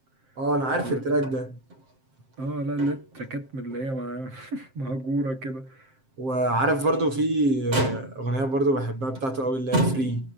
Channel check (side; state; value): left; late; 7.6 ms